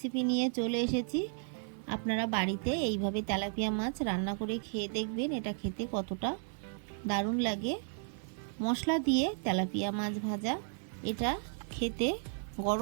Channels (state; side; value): silent; left; 55 dB below the other